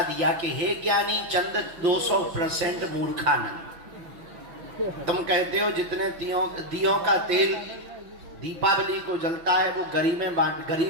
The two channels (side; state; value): left; late; 6.0 ms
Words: दिया कि हे ज्ञानी चंद 200% मूर्खानंद, तुम कहते हो जितने दियों का तेल दीपावली को जलता है वो